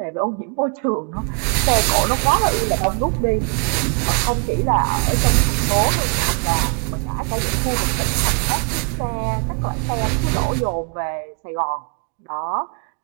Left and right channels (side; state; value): left; quieter; 36.3 dB